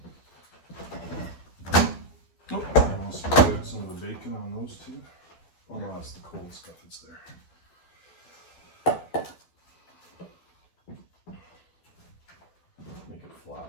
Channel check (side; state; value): right; late; 12 ms